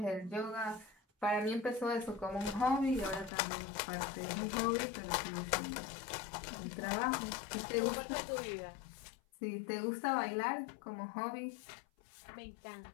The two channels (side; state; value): right; drops out; at 3.3 s